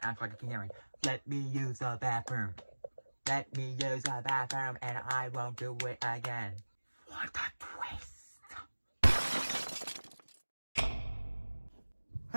act like a Karen. Let me use the bathroom. Let me use the bathroom and I won't do it again. What a twist.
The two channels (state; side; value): inverted; both; correlation -1.00